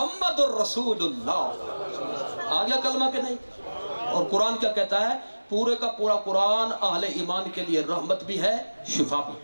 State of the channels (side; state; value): both; inverted; correlation -1.00